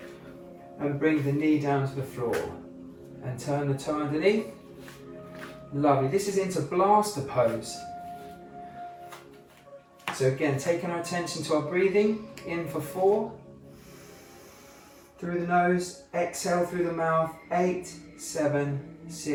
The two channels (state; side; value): identical; both; correlation 1.00